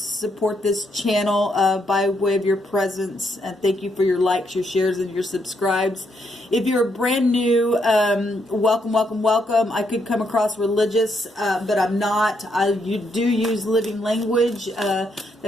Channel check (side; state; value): both; normal; correlation 0.76